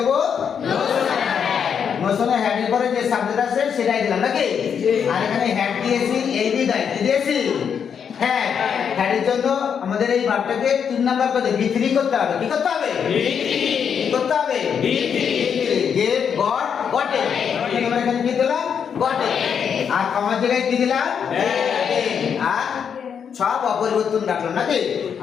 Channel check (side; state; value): right; quieter; 7.4 dB